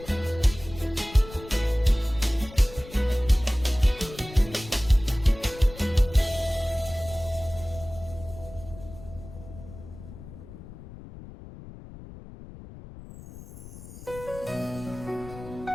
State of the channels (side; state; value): left; noise; rumble, 15 dB below the sound